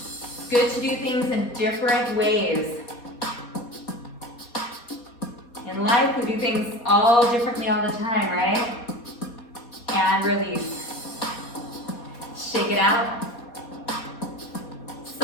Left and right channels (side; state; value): right; late; 4.2 ms